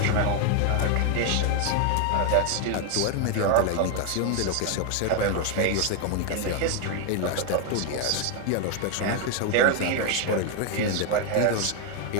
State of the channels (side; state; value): both; different; correlation 0.01